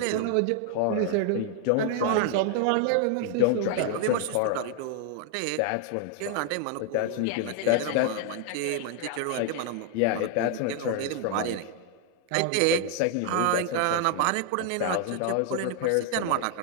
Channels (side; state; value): both; different; correlation 0.00